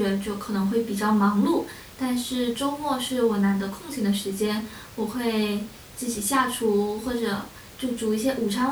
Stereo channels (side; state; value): both; identical; correlation 1.00